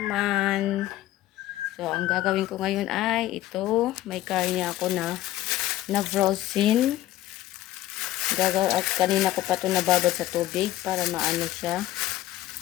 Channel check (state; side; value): quieter; right; 14.9 dB